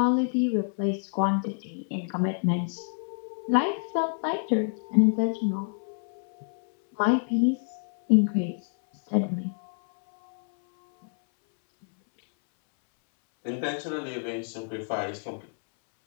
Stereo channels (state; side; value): silent; right; 60 dB below the other